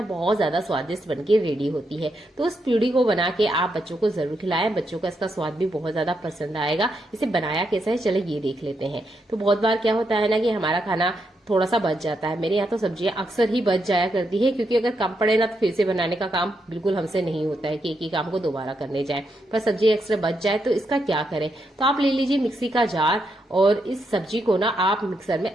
बहुत ज्यादा स्वादिष्ट बनके रेडी होती है। तो उस पूड़ी को बना के आप बच्चों को जरूर खिलाएं, बच्चों का इसका स्वाद भी बहुत ज्यादा पसंद आएगा। इसे बनाया कैसा है चलो ये देख लेते हैं। तो बहुत बार क्या होता है ना कि हमारा खाना थोड़ा सा बच जाता है। मेरे यहाँ तो सब्जियां अक्सर ही बच जाया करती है, क्योंकि अगर कम पड़े ना तो फिर से बनाने का काम बिल्कुल हमसे नहीं होता है कि एक ही काम को दोबारा करने जाए। पर सब्जी एक्स्ट्रा बच जाए तो इसका क्या करें। तो आप ले लीजिए मिक्सी का जार और इस सब्जी को ना आप मिक्सर में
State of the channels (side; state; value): both; normal; correlation 0.81